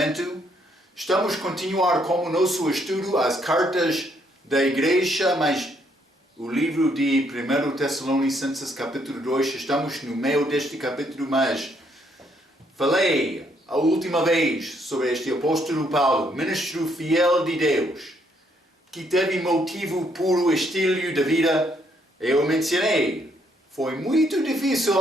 Estamos a continuar com o nosso estudo, as cartas da igreja, mas o livro de 1 Tessalonicenses capítulo 2, estamos no meio deste capítulo, mas falei a última vez sobre este apóstolo Paulo, ministro fiel de Deus, que teve motivo puro estilo de vida. Eu mencionei, foi muito difícil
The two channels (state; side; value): normal; both; correlation 0.71